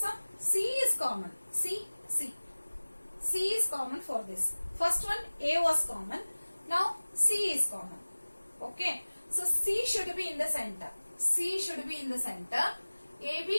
C is common. C is common for this. First one A was common. Now C is common. Okay. So C should be in the center. C should be in the center.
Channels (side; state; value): both; inverted; correlation -1.00